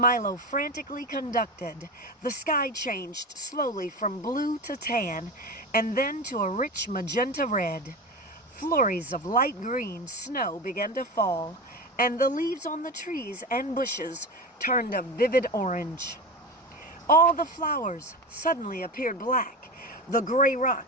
frantically conducted, the sky changed slowly from blue to tan and then to a rich magenta red. Flurries of light green snow began to fall, and the leaves on the trees and bushes turned a vivid orange. All the flowers suddenly appeared black. The gray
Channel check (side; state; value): both; normal; correlation 0.25